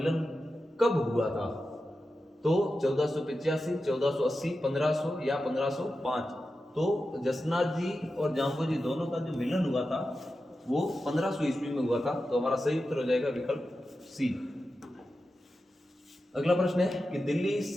कब हुआ था? तो 1485, 1480, 1500 या 1505? तो जसनाथ जी और जाम्बो जी दोनों का जो मिलन हुआ था वो 1500 ईस्वी में हुआ था। तो हमारा सही उत्तर हो जाएगा विकल्प सी। अगला प्रश्न है कि दिल्ली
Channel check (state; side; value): normal; both; correlation 0.91